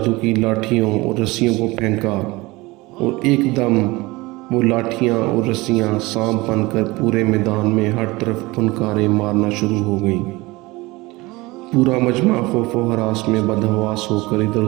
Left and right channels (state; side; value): quieter; left; 21.9 dB